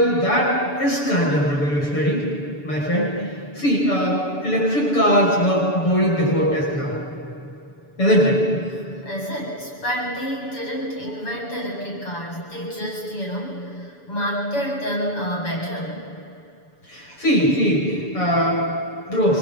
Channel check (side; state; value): right; late; 7.0 ms